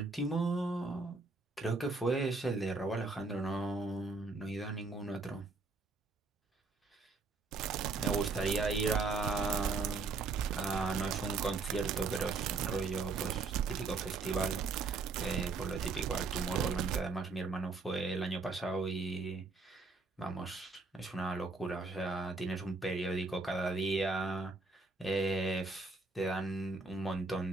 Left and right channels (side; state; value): left; quieter; 3.9 dB